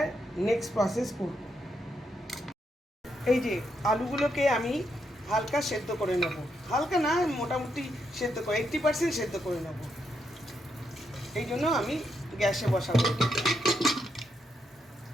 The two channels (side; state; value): both; normal; correlation 0.80